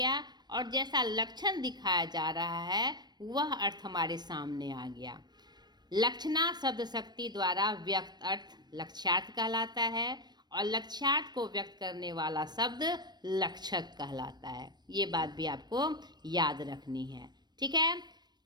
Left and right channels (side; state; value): left; late; 0.20 ms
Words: और जैसा लक्षण दिखाया जा रहा है वह अर्थ हमारे सामने आ गया। लक्षणा शब्द शक्ति द्वारा व्यक्त अर्थ लक्ष्यार्थ कहलाता है और लक्ष्यार्थ को व्यक्त करने वाला शब्द लक्षक कहलाता है। ये बात भी आपको याद रखनी है। ठीक है,